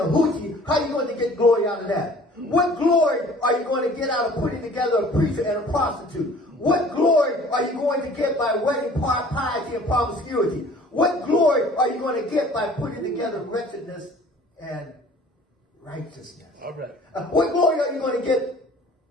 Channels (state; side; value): normal; both; correlation 0.50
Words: hoochie, how are you going to get glory out of that? What glory are you going to get out of putting together a preacher and a prostitute? What glory are you going to get by wedding piety and promiscuity? What glory are you going to get by putting together wretchedness and righteousness? All right. What glory are you going to get